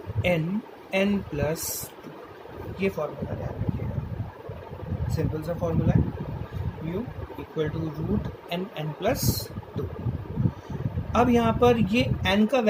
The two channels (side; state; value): both; identical; correlation 1.00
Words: n+2। ये फॉर्मूला ध्यान रखिएगा, सिंपल सा फॉर्मूला है, mu equal to root n+2। अब यहाँ पर ये n का